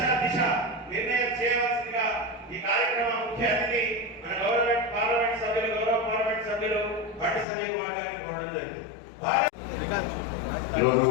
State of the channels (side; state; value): right; drops out; at 7.5 s